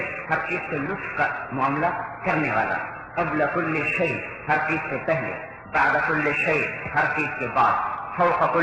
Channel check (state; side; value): identical; both; correlation 1.00